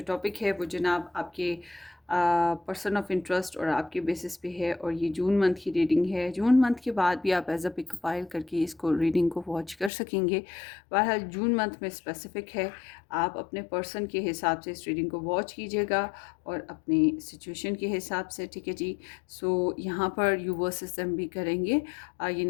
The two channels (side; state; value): right; drops out; at 9.9 s